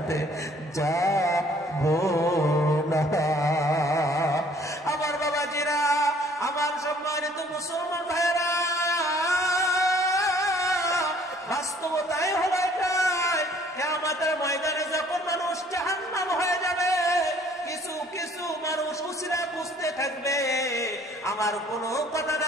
যাবো না। আমার বাবাজিরা, আমার সম্মানিত মুসলমান ভাইয়েরা, বাস্তবতাই হলো এটাই। কিয়ামতের ময়দানে যখন মানুষ জাহান্নাম হয়ে যাবে, কিছু কিছু মানুষ উসিলা বুঝতে থাকবে। আমার কোনো কথা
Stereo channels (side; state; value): both; normal; correlation 0.58